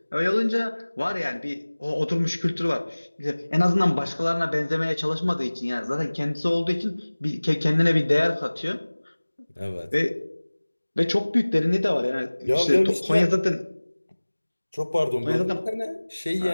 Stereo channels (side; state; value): both; inverted; correlation -1.00